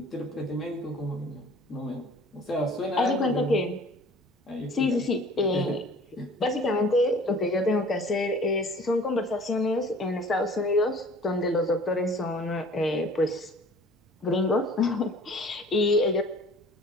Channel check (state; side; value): normal; both; correlation 0.49